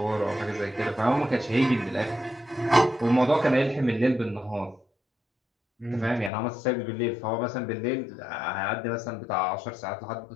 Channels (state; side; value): drops out; right; at 6.3 s